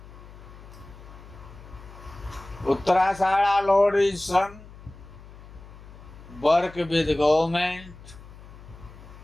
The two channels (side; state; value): left; noise; hum, 18 dB below the sound